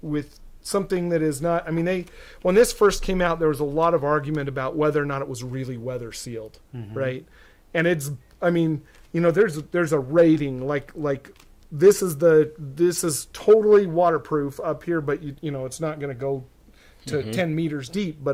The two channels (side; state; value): both; identical; correlation 1.00